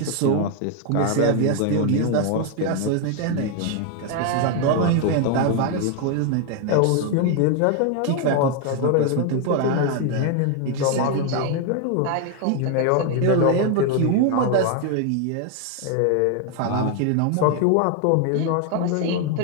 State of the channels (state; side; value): different; both; correlation 0.01